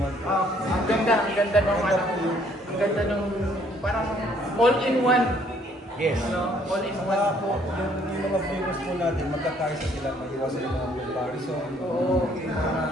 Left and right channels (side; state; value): both; normal; correlation 0.63